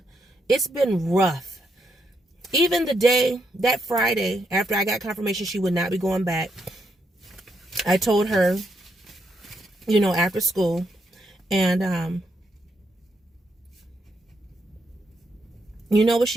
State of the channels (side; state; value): both; normal; correlation 0.78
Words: rough. Even that Friday, after I got confirmation she would not be going back, I told her, after school, and you know what